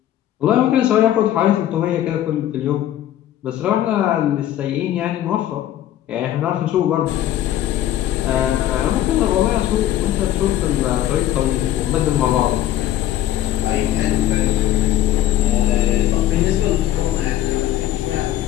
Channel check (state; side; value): quieter; right; 12.5 dB